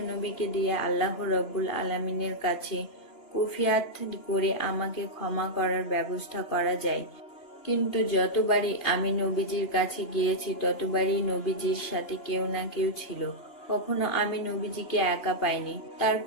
দিয়ে আল্লাহ রব্বুল আলামিনের কাছে কুফিয়াত করে আমাকে ক্ষমা করার ব্যবস্থা করা যায়। কিন্তু যতবারই আমি নবীজির কাছে গিয়েছি ততবারই নবীজির সাথে কেউ না কেউ ছিল। কখনো আমি নবীজিকে একা পাইনি।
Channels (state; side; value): late; right; 2.8 ms